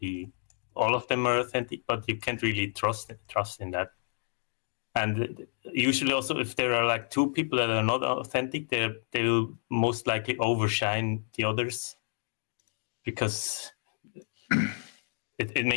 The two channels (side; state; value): right; silent; digital silence